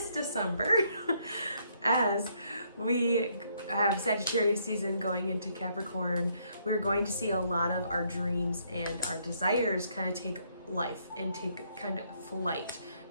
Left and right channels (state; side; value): inverted; both; correlation -0.70